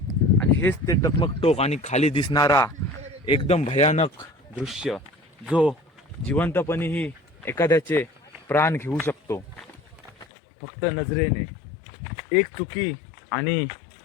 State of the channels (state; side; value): drops out; right; at 10.2 s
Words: आणि हेच ते टकमक टोक आणि खाली दिसणारा एकदम भयानक दृश्य जो जिवंतपणेही एखाद्याचे प्राण घेऊ शकतो. फक्त नजरेने एक चुकी आणि